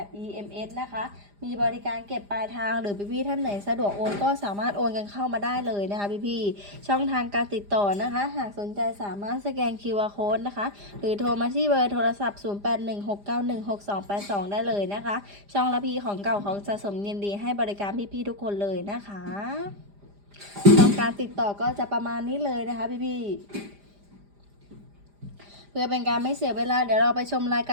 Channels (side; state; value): left; late; 5.0 ms